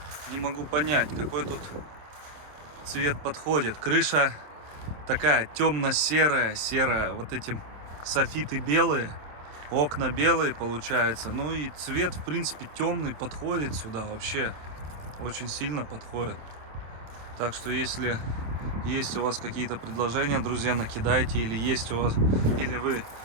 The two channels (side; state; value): left; late; 27 ms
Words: не могу понять, какой тут цвет подходит. Крыша такая темно-серая, серая, вот эти софиты белые, окна белые получается. Ну и цвет, в принципе, темный, подходит сюда вообще, очень сильно подходит. Так что если есть у вас какие-то предложения, друзья, накидайте, или есть у вас, или вы